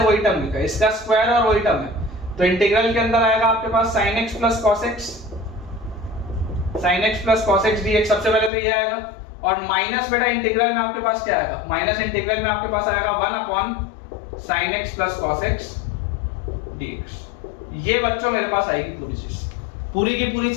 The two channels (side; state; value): right; drops out; at 8.5 s